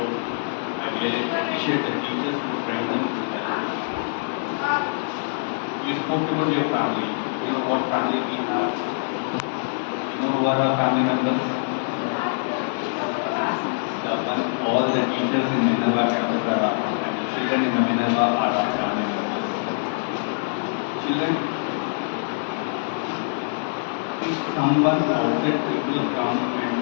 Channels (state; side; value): silent; right; digital silence